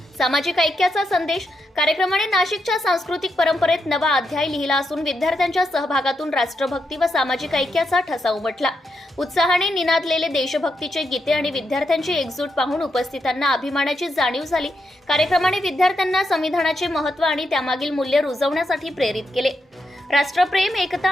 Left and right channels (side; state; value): both; normal; correlation 0.83